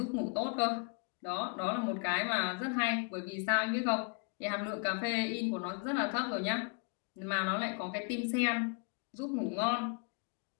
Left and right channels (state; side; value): quieter; right; 38.1 dB